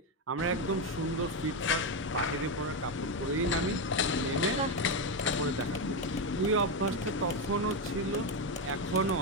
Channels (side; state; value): both; normal; correlation 0.08